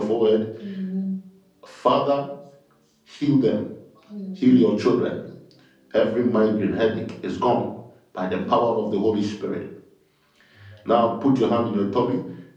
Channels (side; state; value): both; identical; correlation 1.00